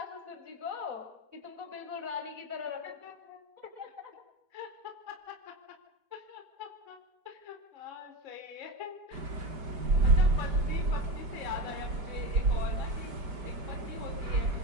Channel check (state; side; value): late; left; 5.1 ms